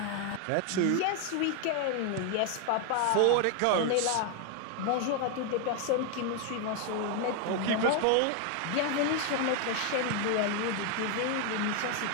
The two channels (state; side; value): different; both; correlation 0.01